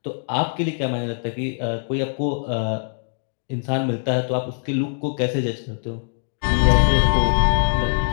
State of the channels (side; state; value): right; silent; digital silence